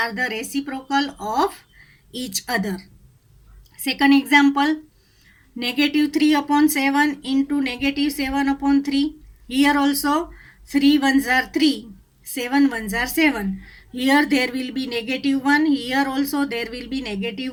the reciprocal of each other. Second example, negative 3 upon 7 into negative 7 upon 3. Here also 3 ones are 3, 7 ones are 7. Here there will be negative 1. Here also there will be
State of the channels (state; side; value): identical; both; correlation 1.00